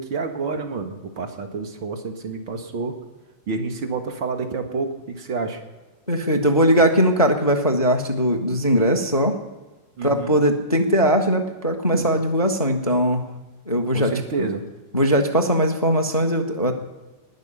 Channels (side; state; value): both; inverted; correlation -0.35